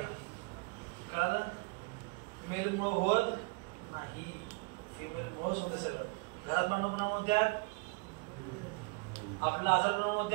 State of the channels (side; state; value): left; quieter; 29.7 dB